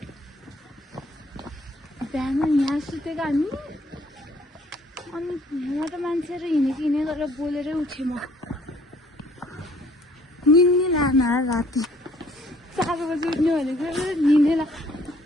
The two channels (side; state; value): both; normal; correlation 0.61